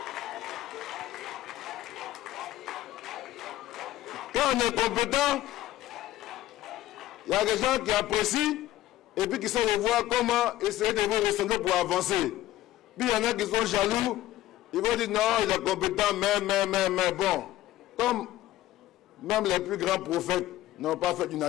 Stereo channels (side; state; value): right; quieter; 14.7 dB